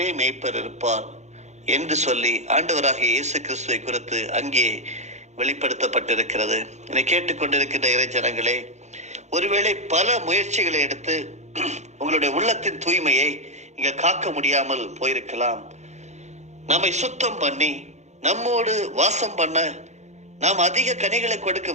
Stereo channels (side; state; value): left; late; 0.33 ms